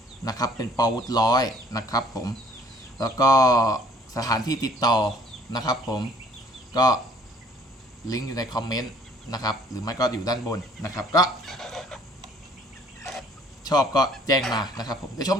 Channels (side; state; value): both; normal; correlation 0.58